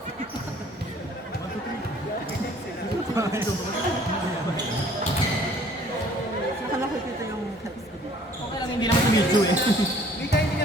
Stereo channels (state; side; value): normal; both; correlation 0.56